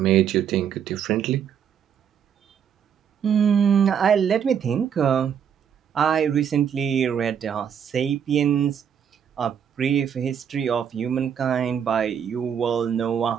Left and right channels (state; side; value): quieter; left; 8.1 dB